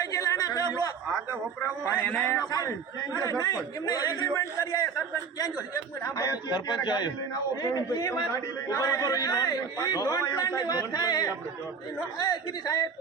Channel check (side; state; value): left; quieter; 5.9 dB